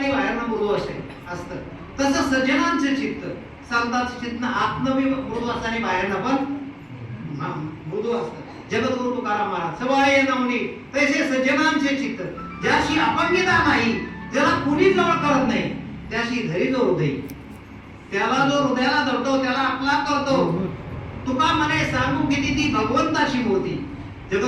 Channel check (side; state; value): both; identical; correlation 1.00